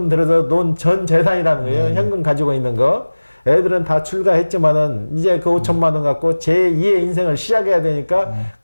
들어서 논 전 재산이라는 거예요. 현금 가지고 있는 거. 애들은 다 출가했지만은 이제 그 5천만 원 갖고 제2의 인생을 시작해야 되니까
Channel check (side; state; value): both; inverted; correlation -1.00